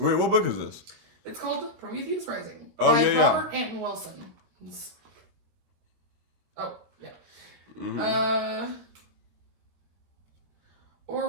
what book is this? It's called Prometheus Rising by Robert Anton Wilson. Oh yeah. Mm-hmm.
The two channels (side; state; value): left; late; 12 ms